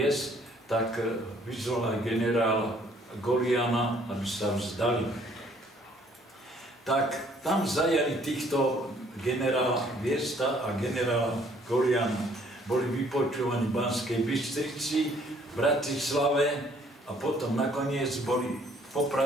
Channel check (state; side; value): normal; both; correlation 0.61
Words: tak vyzval aj generála Goliána, aby sa vzdali. Tak tam zajali týchto generála Viesta a generála Goliána. Boli vypočúvaní v Banskej Bystrici, v Bratislave a potom nakoniec boli